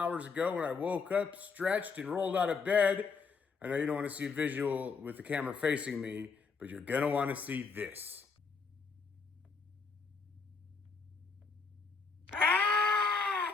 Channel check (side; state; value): right; quieter; 4.9 dB